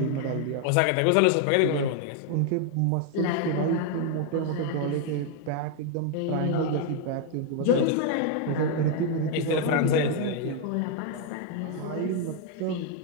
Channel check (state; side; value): different; both; correlation 0.01